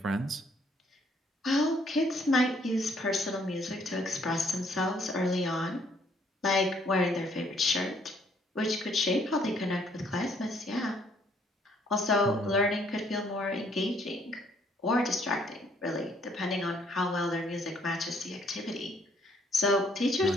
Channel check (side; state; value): both; normal; correlation 0.65